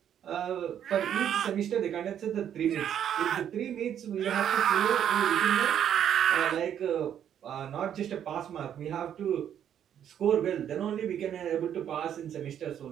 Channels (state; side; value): quieter; left; 9.6 dB